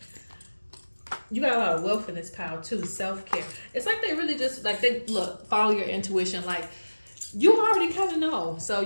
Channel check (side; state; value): both; inverted; correlation -1.00